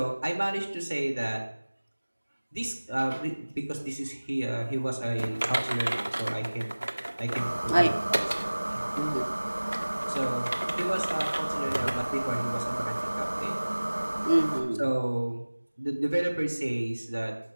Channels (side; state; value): both; inverted; correlation -1.00